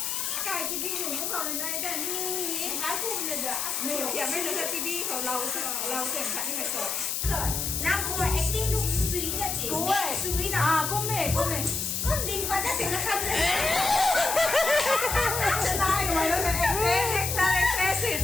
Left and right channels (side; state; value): left; noise; hiss, 1 dB below the sound